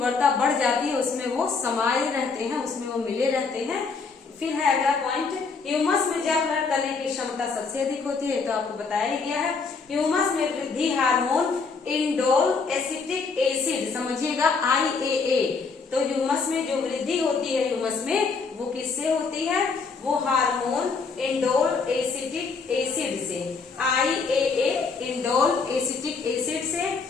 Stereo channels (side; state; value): right; quieter; 4.8 dB